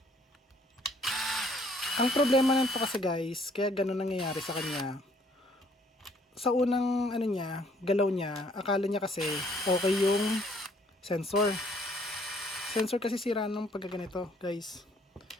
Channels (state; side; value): normal; both; correlation 0.63